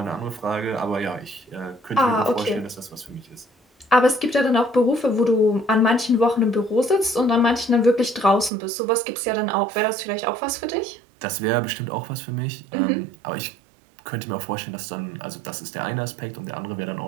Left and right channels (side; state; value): left; drops out; at 8.5 s